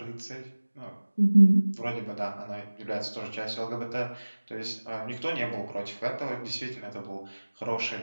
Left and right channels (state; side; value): inverted; both; correlation -1.00